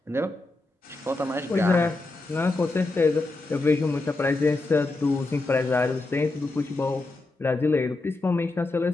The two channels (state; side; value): quieter; right; 3.1 dB